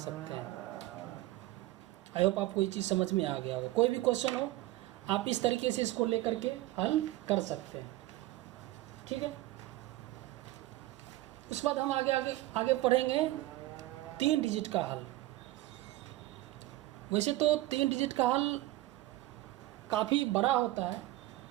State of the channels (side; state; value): left; quieter; 17.3 dB